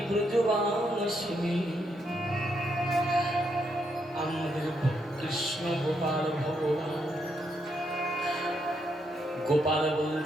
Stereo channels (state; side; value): normal; both; correlation 0.78